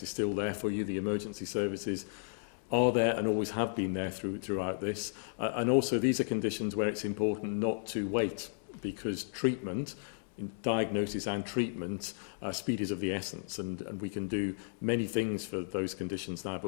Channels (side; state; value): right; silent; digital silence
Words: is still there for you. The emergency services are there and always have been there throughout this. And also these are conditions where it's important not to wait, because treatment, diagnosis and treatment, speed is of the essence, and we can do many things for those conditions now,